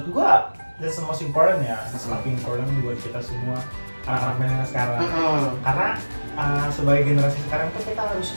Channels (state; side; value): inverted; both; correlation -1.00